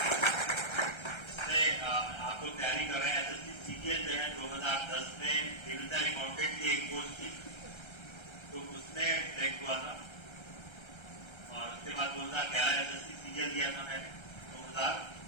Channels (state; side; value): late; right; 1.3 ms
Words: आप लोग तैयारी कर रहे हैं। एसएससी सीजीएल जो है 2010 में डिविजनल अकाउंटेंट की एक पोस्ट थी, तो उसमें सिलेक्ट हुआ था। और उसके बाद 2011 एसएससी सीजीएल दिया था मैंने,